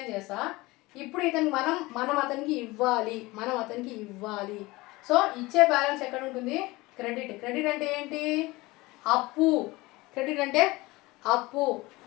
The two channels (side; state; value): right; quieter; 21.3 dB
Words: చేస్తా. ఇప్పుడు ఇతనికి మనం అతనికి ఇవ్వాలి. సో ఇచ్చే బ్యాలెన్స్ ఎక్కడ ఉంటుంది? క్రెడిట్ అంటే ఏంటి? అప్పు.